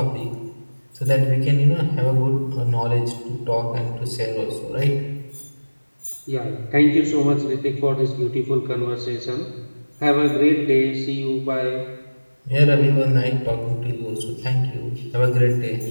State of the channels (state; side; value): inverted; both; correlation -1.00